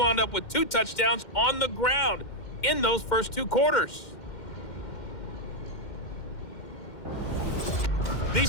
up with 2 touchdowns on the ground in those first 2 quarters.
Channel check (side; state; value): right; late; 2.1 ms